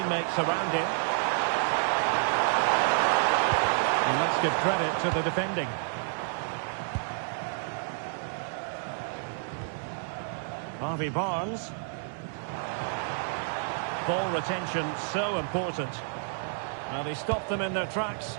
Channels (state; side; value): silent; left; 58 dB below the other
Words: around him. And let's give credit to the defending. Harvey Barnes. Ball retention so important. Now they stopped them in their tracks.